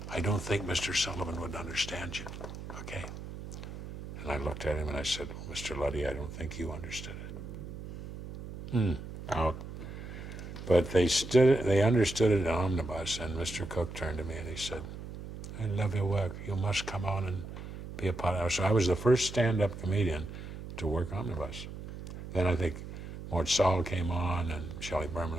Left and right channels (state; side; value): noise; right; hum, 10 dB below the sound